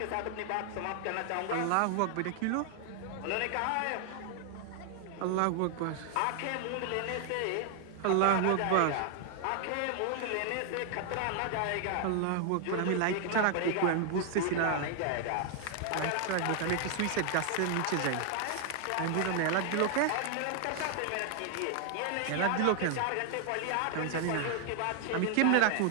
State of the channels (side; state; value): both; different; correlation 0.00